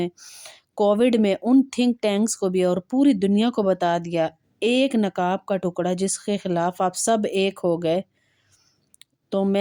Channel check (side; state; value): both; identical; correlation 1.00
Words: کووڈ میں ان تھنک ٹینکس کو بھی اور پوری دنیا کو بتا دیا، ایک نقاب کا ٹکڑا جس کے خلاف آپ سب ایک ہو گئے، تو